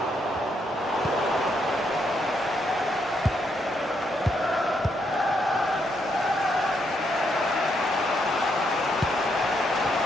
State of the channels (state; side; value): normal; both; correlation 0.76